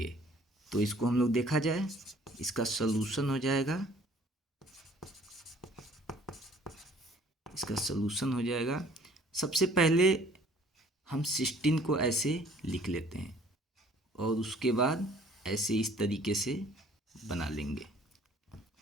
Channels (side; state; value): both; normal; correlation 0.55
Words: तो इसको हम लोग देखा जाए, इसका सलूशन हो जाएगा। सबसे पहले हम 16 को ऐसे लिख लेते हैं और उसके बाद ऐसे इस तरीके से बना लेंगे।